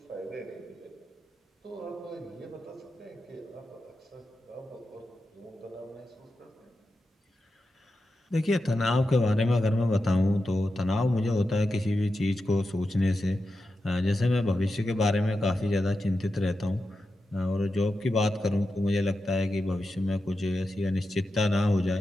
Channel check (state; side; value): normal; both; correlation 0.90